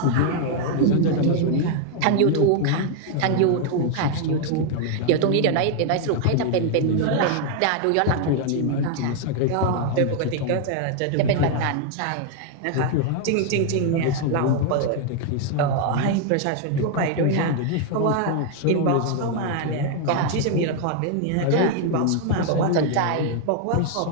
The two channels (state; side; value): different; both; correlation 0.00